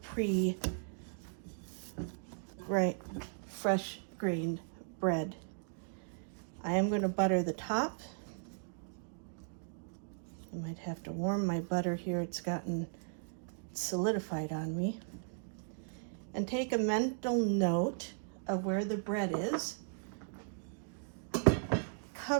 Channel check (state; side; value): silent; left; digital silence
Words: fresh grained bread. I am going to butter the top. I might have to warm my butter here. It's gotten solidified on me. And take a mental note of where the bread is.